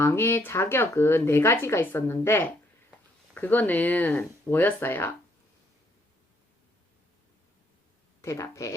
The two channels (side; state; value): both; normal; correlation 0.70